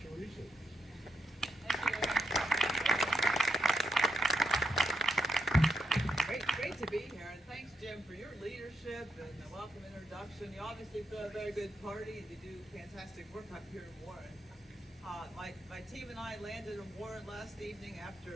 Resources. Great to be here, and thanks, Jim, for your leadership and the welcome introduction. You obviously throw a very good party, and you do fantastic work up here in Warren. My team and I landed in Warren last evening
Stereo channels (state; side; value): normal; both; correlation 0.82